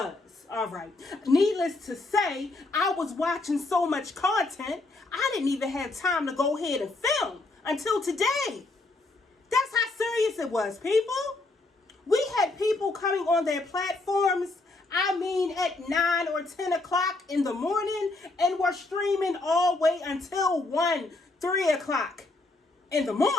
all right? Needless to say, I was watching so much content, I didn't even have time to go ahead and film until today. That's how serious it was, people. We had people coming on their platforms, I mean, at 9 or 10 o'clock in the morning, and were streaming all the way until 1, 3 o'clock in the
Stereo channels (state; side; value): quieter; right; 3.1 dB